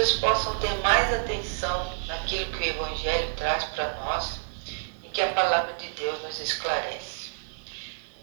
possam ter mais atenção naquilo que o Evangelho traz para nós e que a palavra de Deus nos esclarece.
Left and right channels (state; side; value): silent; left; digital silence